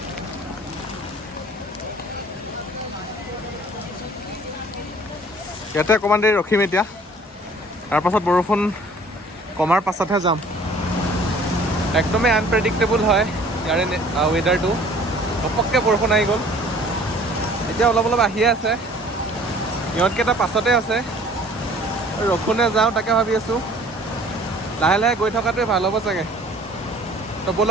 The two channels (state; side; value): normal; both; correlation 0.52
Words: ইয়াতে অকণমান দেৰি ৰখিম এতিয়া, তাৰপাছত বৰষুণ কমাৰ পাছতহে যাম। একদমেই আনপ্ৰেডিক্টেবল হয় ইয়াৰে ৱেডাৰটো। ঘপককৈ বৰষুণ আহি গ'ল, এতিয়া অলপ অলপ আহিয়ে আছে। ইহঁতকেইটা পাছতে আছে, ৰখোনে যাওঁ তাকে ভাবি আছোঁ। লাহে লাহে গৈ থকাটোৱে ভাল হ'ব চাগে। তো